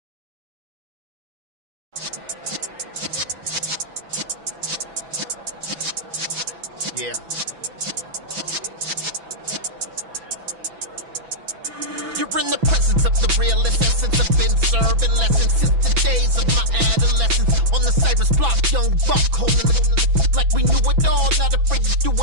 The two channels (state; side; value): late; left; 6.0 ms